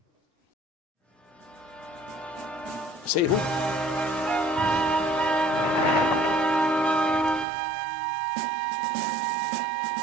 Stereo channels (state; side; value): drops out; left; at 7.5 s